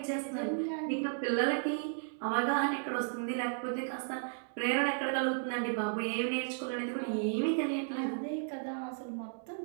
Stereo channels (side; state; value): left; silent; digital silence